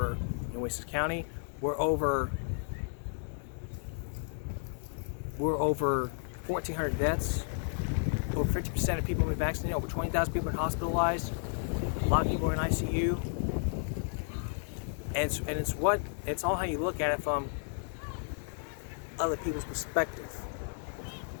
Nueces County. We're over 1,400 deaths. Over 50% of people have been vaccinated. Over 20,000 people have been hospitalized. A lot of people are in ICU. And it's all how you look at it from other people's perspective.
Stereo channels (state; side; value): silent; right; 56 dB below the other